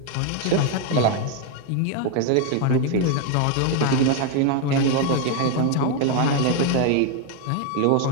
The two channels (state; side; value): different; both; correlation 0.01